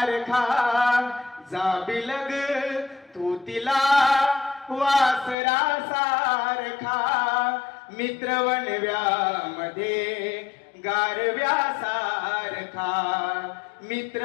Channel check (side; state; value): right; drops out; at 5.4 s